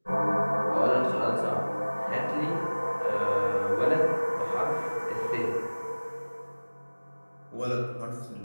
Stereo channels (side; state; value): both; inverted; correlation -1.00